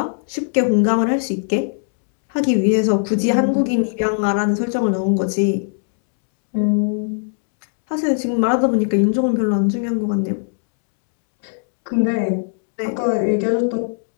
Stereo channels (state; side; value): silent; right; 66 dB below the other